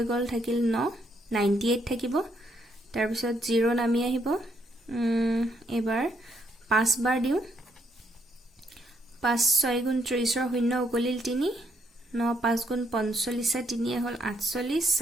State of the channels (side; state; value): both; normal; correlation 0.73